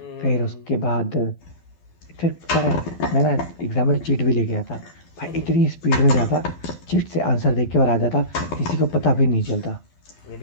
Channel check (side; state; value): right; late; 12 ms